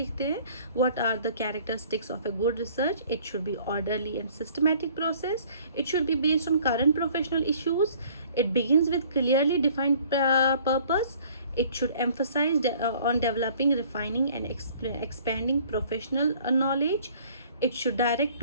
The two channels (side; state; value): both; inverted; correlation -0.55